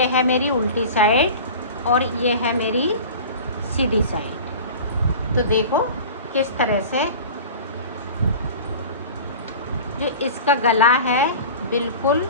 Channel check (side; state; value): both; inverted; correlation -0.37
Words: है मेरी उल्टी साइड और ये है मेरी सीधी साइड। तो देखो किस तरह से जो इसका गला है बिल्कुल